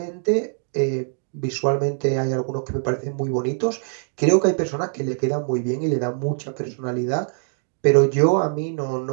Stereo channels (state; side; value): silent; left; digital silence